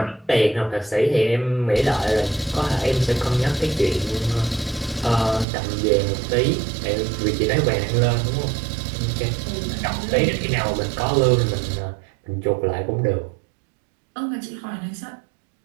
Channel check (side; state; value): left; drops out; at 5.5 s